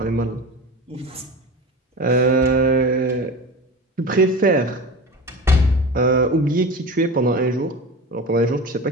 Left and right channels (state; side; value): normal; both; correlation 0.30